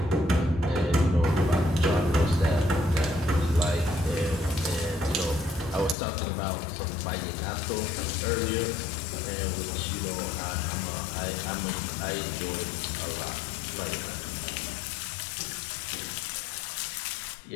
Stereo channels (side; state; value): right; drops out; at 6.0 s